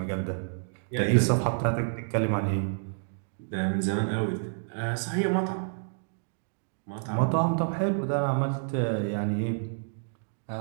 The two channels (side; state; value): left; silent; digital silence